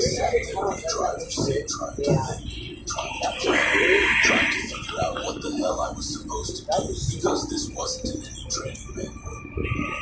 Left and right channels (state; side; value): identical; both; correlation 1.00